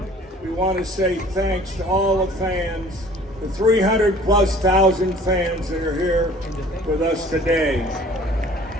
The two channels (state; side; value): normal; both; correlation 0.50